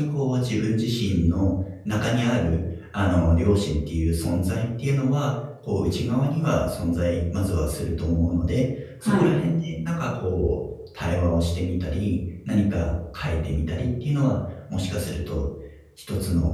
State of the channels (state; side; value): identical; both; correlation 1.00